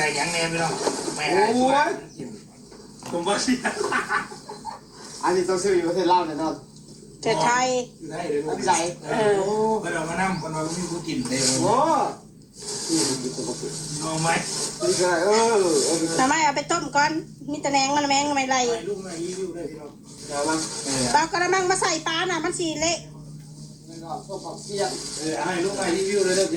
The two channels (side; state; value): both; identical; correlation 1.00